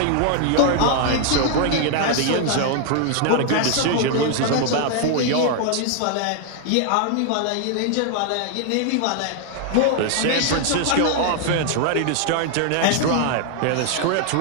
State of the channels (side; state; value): both; different; correlation 0.00